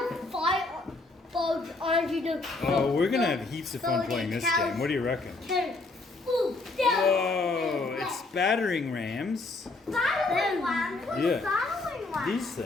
put fire bugs onto the. Oh, we're gonna have heaps of fun so playing the this cows game. What do you reckon? can- Ooh, down. Whoa, it's battering rams. Battling one. What's Yeah. battling one? These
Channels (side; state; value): right; quieter; 3.4 dB